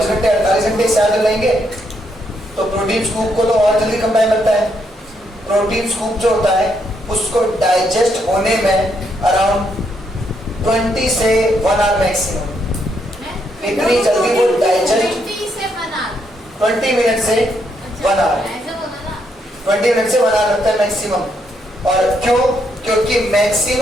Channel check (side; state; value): both; normal; correlation 0.76